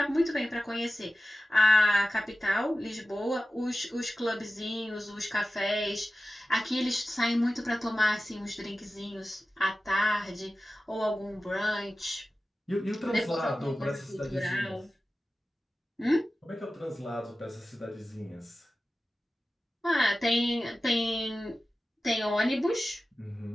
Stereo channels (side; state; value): both; normal; correlation 0.95